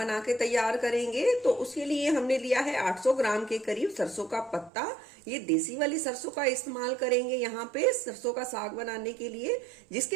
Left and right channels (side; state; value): left; drops out; at 4.7 s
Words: के तैयार करेंगे। तो उसके लिए हमने लिया है 800 ग्राम के करीब सरसों का पत्ता। ये देसी वाली सरसों का इस्तेमाल करेंगे यहाँ पे सरसों का साग बनाने के लिए,